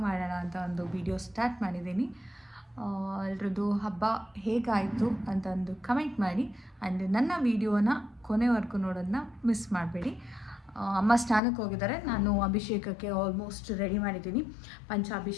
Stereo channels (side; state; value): right; drops out; at 11.4 s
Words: ಮಾಡೋಣ ಅಂತ ಒಂದು ವಿಡಿಯೋ ಸ್ಟಾರ್ಟ್ ಮಾಡಿದ್ದೀನಿ. ಎಲ್ರದ್ದು ಹಬ್ಬ ಹೇಗಾಯಿತು ಅಂತ ಒಂದು ಕಮೆಂಟ್ ಮಾಡಿ. ಆ್ಯಂಡ್ ನನ್ನ ವಿಡಿಯೋನ ಕೊನೆವರೆಗೂ ನೋಡೋದನ್ನ ಮಿಸ್ ಮಾಡಬೇಡಿ. ಅಮ್ಮ ಸ್ನಾನಕ್ಕೆ ಹೋಗಿದ್ದಾರೆ, ನಾನು ಅಭಿಷೇಕಕ್ಕೆ ಆಲ್ಮೋಸ್ಟ್ ರೆಡಿ ಮಾಡಿದ್ದೀನಿ.